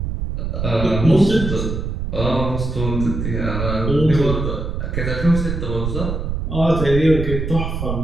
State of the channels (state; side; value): noise; right; rumble, 3 dB below the sound